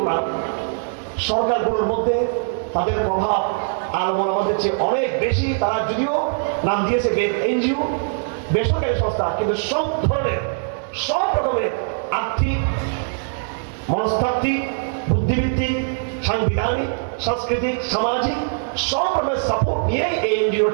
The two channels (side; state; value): left; silent; digital silence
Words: না, সরকারগুলোর মধ্যে তাদের প্রভাব আলমোলামাদের চেয়ে অনেক বেশি। তারা যদিও নাম দিয়েছে এনজিও, বেসরকারি সংস্থা, কিন্তু সব ধরনের, সব রকমের আর্থিক, মনস্তাত্ত্বিক, বুদ্ধিভিত্তিক, সাংবিধানিক, সাংস্কৃতিক, সামাজিক সব রকমের সাপোর্ট নিয়েই এই এনজিও